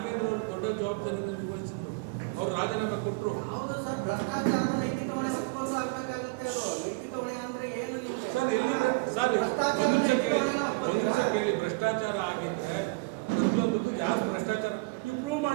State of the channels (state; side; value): quieter; left; 27.5 dB